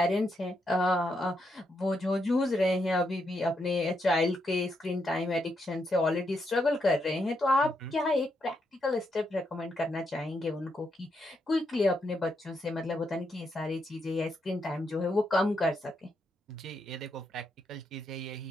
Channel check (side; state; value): both; normal; correlation 0.80